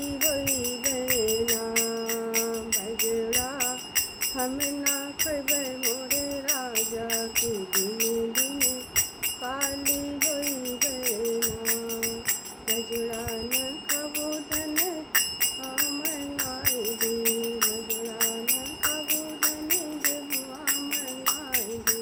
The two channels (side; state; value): both; identical; correlation 1.00